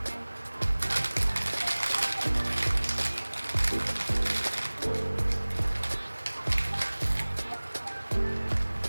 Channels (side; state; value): both; inverted; correlation -1.00